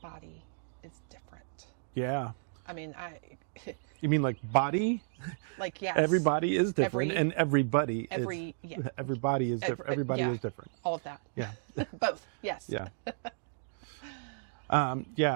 is different. Yeah. You mean like body? Like, yes. Everybody is different, and everybody everybody is different. Everybody is different. All of that. Yeah. Both. Yes. Yeah. I'll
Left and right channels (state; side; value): silent; left; digital silence